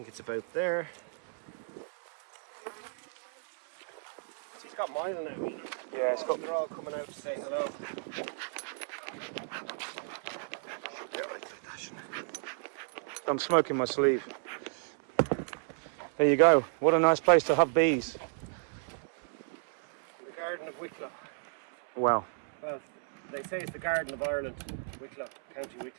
it's about there. He's got mine on it. Yeah, it's got... They're all coming out to say hello. I'm smoking my sleeve. There you go. What a nice place to have bees. The Garden of Wicklow. Wow. Well, they say it's the Garden of Ireland, Wicklow, County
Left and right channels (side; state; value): left; silent; 56 dB below the other